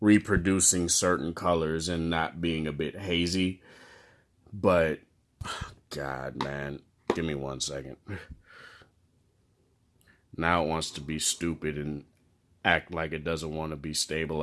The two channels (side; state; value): both; identical; correlation 1.00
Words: certain colors and not being a bit hazy. But God, man, give me 1 second. Now it wants to be stupid and act like it doesn't want to be